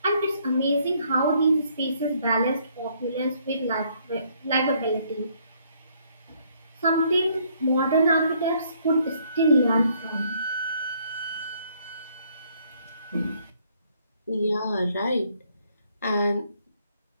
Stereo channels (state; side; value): inverted; both; correlation -0.67